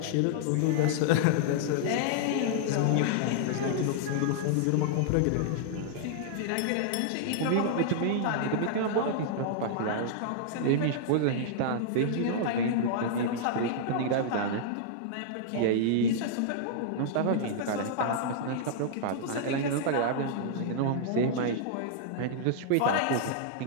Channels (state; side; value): different; both; correlation -0.01